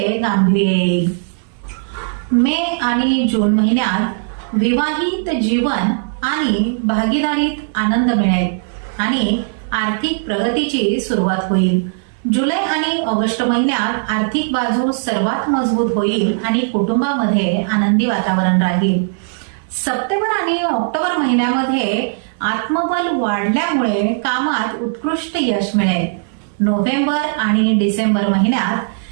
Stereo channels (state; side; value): silent; left; 62 dB below the other